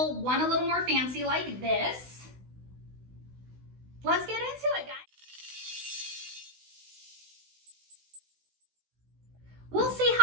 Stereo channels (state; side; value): late; left; 16 ms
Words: one a little more fancy like this. Let's get into it, guys. We'll see